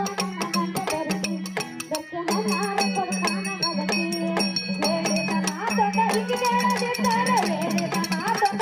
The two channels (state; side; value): identical; both; correlation 1.00